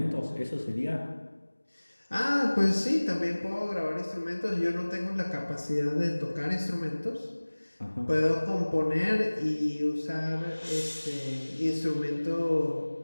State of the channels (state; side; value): inverted; both; correlation -1.00